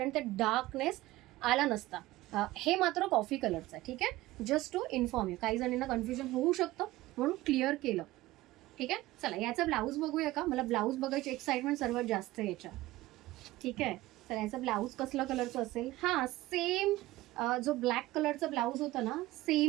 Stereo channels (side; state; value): left; quieter; 17.8 dB